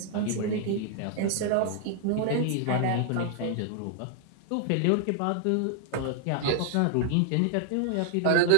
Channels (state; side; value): different; both; correlation 0.00